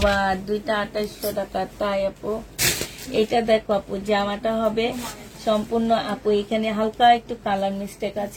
দুইটা 2800 টাকা। তাই আপু এটা দেখো আপু জামাটা হবে সম্পূর্ণ আপু, এখানে হালকা একটু কালার মিস্টেক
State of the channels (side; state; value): both; identical; correlation 1.00